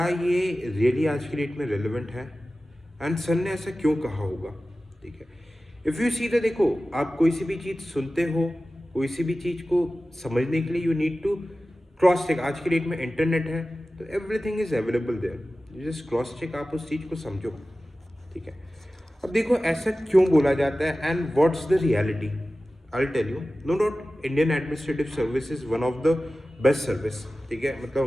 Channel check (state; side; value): normal; both; correlation 0.95